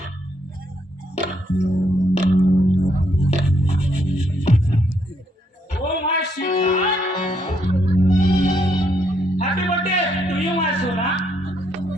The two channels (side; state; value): both; normal; correlation 0.74